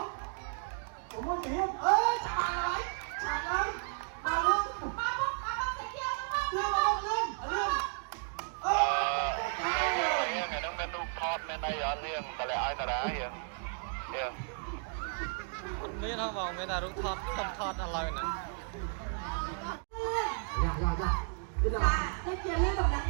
còn mua gì hết chả lại bà luôn ngày đông bên đục thọt bên đây ở riêng tại lại ai ta đá hiền hiền មានហ៎បងមានតែរូបថតខ្ញុំថតឥឡូវហ្នឹង ទៅជាលឿនកំដៅ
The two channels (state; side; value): silent; left; 55 dB below the other